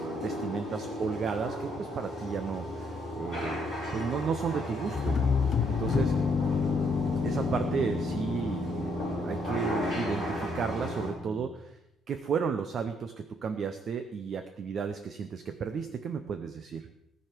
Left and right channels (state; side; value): normal; both; correlation 0.70